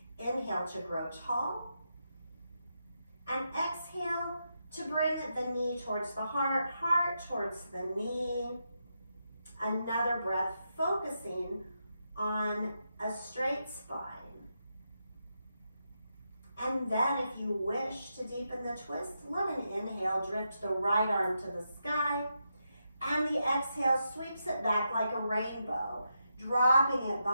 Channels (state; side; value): inverted; both; correlation -0.84